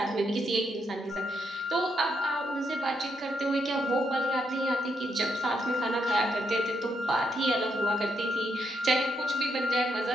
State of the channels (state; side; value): normal; both; correlation 0.79